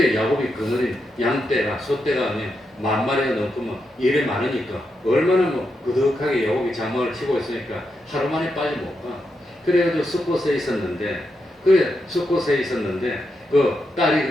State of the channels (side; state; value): both; normal; correlation 0.84